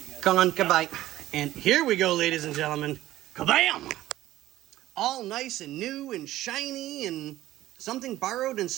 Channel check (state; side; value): quieter; left; 15.0 dB